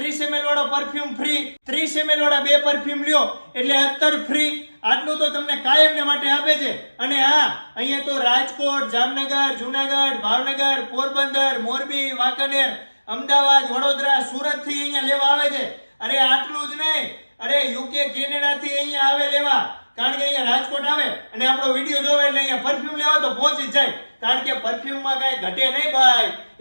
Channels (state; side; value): inverted; both; correlation -1.00